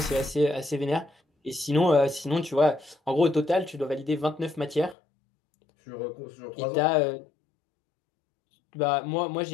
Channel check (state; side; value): drops out; right; at 5.0 s